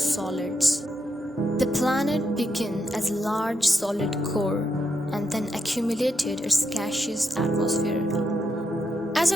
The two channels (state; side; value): normal; both; correlation 0.82